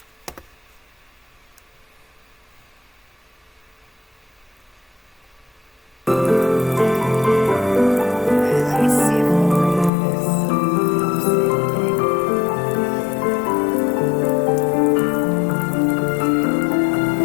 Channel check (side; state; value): right; drops out; at 9.9 s